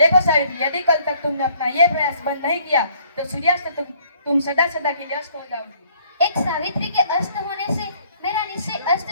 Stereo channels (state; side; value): inverted; both; correlation -0.61